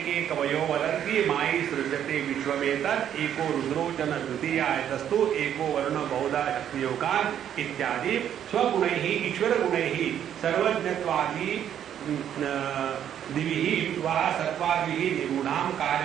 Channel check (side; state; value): left; quieter; 9.9 dB